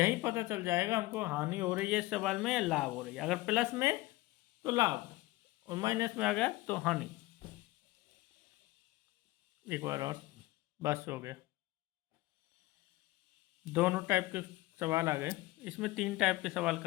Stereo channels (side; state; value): right; quieter; 19.2 dB